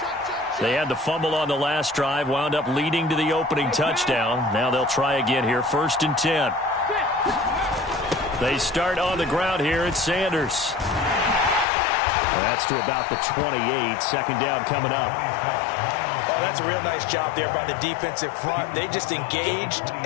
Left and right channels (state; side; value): drops out; right; at 11.7 s